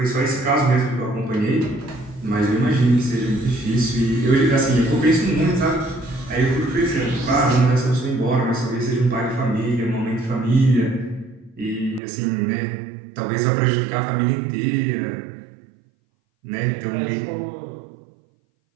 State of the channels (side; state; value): left; drops out; at 12.0 s